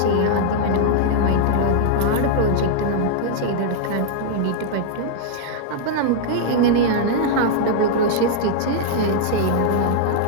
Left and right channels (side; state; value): both; different; correlation -0.01